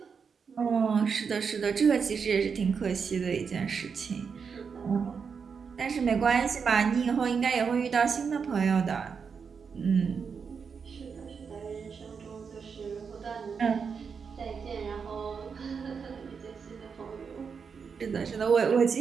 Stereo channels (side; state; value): left; quieter; 6.0 dB